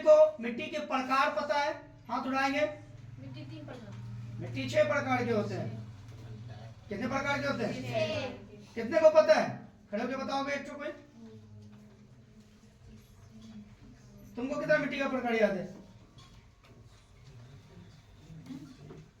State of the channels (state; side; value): identical; both; correlation 1.00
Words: मिट्टी के प्रकार पता है? हाथ उठाएंगे। मिट्टी 3 प्रकार, मिट्टी 6 प्रकार के होते हैं। कितने प्रकार के होते हैं? 6। कितने को पता है? खड़े होकर बताओगे एक कोई। तुमको कितना मिट्टी का प्रकार याद है?